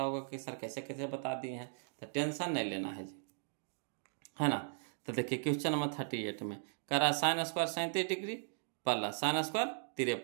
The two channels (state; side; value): silent; left; digital silence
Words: होगा कि सर कैसे कैसे बता दिए हैं, तो टेंशन नहीं लेना है जी, है ना। तो देखिए क्वेश्चन नंबर 38 में कह रहा है sine square 37 degree plus sine square